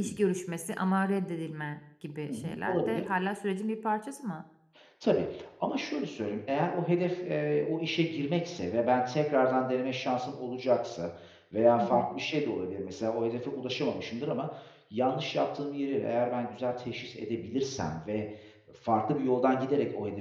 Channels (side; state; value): both; identical; correlation 1.00